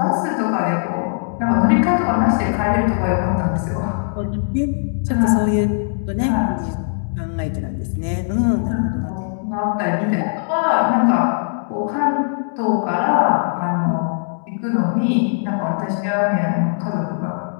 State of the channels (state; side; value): silent; right; digital silence